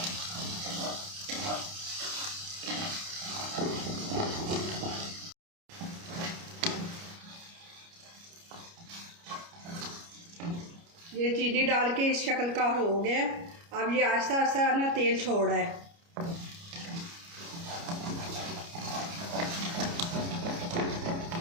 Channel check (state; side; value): late; left; 29 ms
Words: ये चीनी डाल के इस शक्ल का हो गया। अब ये आहिस्ता आहिस्ता ना तेल छोड़ रहा है।